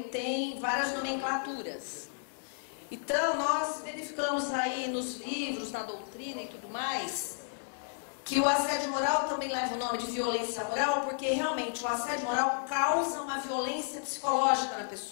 várias nomenclaturas. Então, nós verificamos aí nos livros, na doutrina e tudo mais, que o assédio moral também leva o nome de violência moral, porque realmente o assédio moral causa uma violência psicológica na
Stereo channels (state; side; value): silent; right; 56 dB below the other